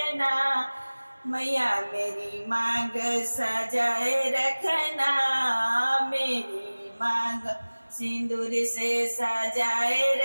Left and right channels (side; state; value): both; inverted; correlation -1.00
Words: मैया मेरी मांग सजाए रखना, मेरी मांग सिंदूर से सजाए